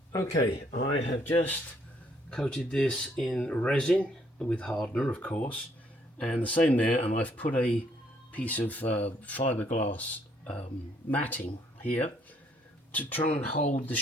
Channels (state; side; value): normal; both; correlation 0.67